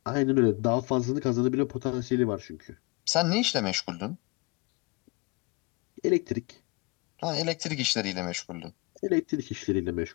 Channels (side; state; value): right; quieter; 27.5 dB